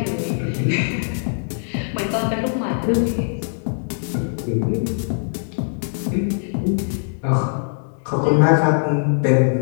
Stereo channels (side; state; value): right; silent; digital silence